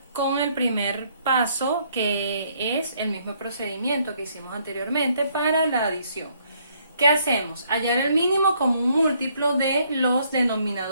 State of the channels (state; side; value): inverted; both; correlation -0.67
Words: con el primer paso, que es el mismo procedimiento que hicimos anteriormente para la adición. ¿Qué hacemos? Hallar el mínimo común múltiplo de los